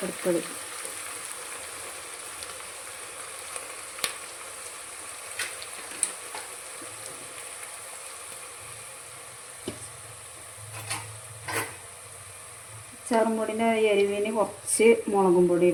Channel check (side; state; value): both; identical; correlation 1.00